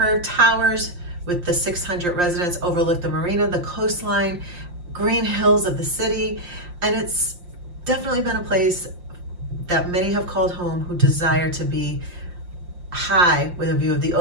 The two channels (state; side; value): late; left; 5.7 ms